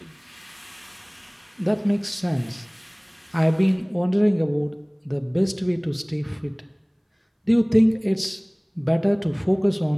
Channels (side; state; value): both; identical; correlation 1.00